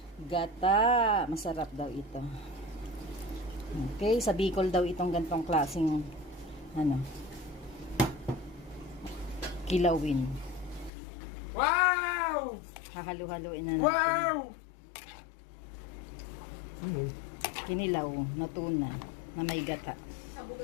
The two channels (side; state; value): right; drops out; at 10.9 s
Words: gata. Masarap daw ito. Okay, sa Bicol daw itong gantong klaseng kilawin. Wow! Hahalu-haluin na natin. Wow! Kinilaw na tuna na may gata.